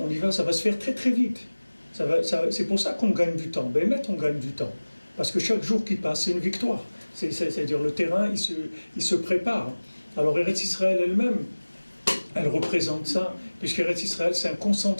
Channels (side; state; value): both; inverted; correlation -1.00